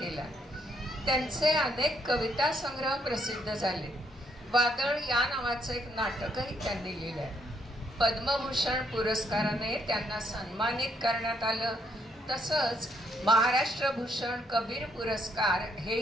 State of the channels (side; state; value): both; normal; correlation 0.72